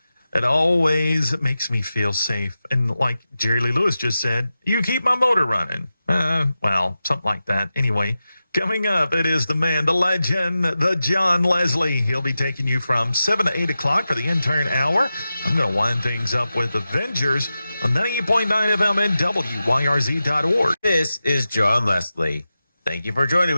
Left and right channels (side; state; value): both; inverted; correlation -0.92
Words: It always makes me feel safe. And like Jerry Lee Lewis just said, you keep my motor running. Well, something like that. Anyway, coming up, it is the man, the legend, the John Leslie. He'll be taking you from 7 to 8 o'clock for the Intern Hour. I'm going to wind things up with Avengers on 98.9 FM and WYRZ.org. This is John Leslie. Thank you for joining